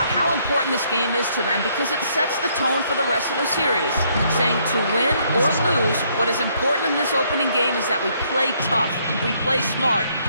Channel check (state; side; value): inverted; both; correlation -0.69